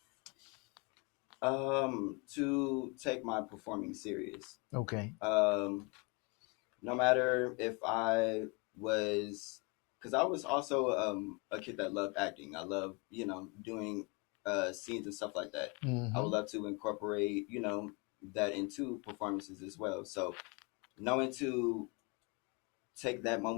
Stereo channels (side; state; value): right; quieter; 30.6 dB